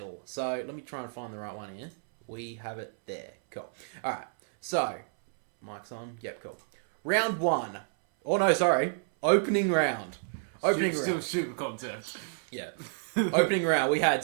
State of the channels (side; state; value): left; silent; 58 dB below the other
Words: So let me try and find the right one here. We have it there. Cool. All right. So, mic's on. Yep, cool. Round 1. Oh, no, sorry. Opening round. Opening round. Still super contest. Yeah. Opening round. We